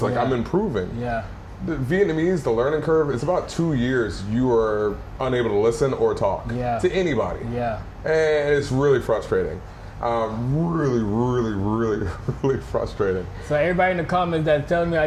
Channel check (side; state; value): both; identical; correlation 1.00